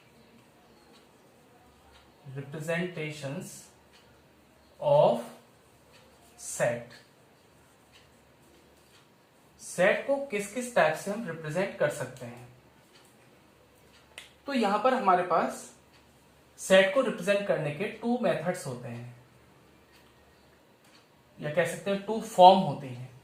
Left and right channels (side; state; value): both; identical; correlation 1.00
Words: of set. Set को किस किस टाइप से हम रिप्रेजेंट कर सकते हैं? तो यहां पर हमारे पास सेट को रिप्रेजेंट करने के टू मेथड्स होते हैं, या कह सकते हैं टू फॉर्म होते हैं।